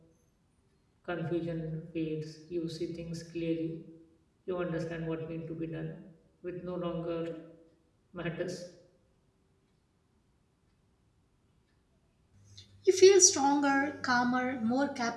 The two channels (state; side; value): identical; both; correlation 1.00